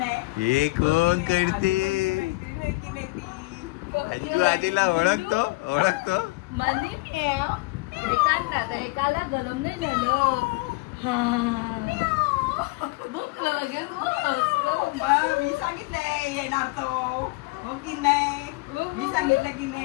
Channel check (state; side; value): quieter; right; 23.4 dB